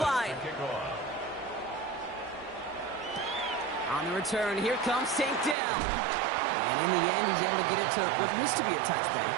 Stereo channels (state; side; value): drops out; left; at 5.6 s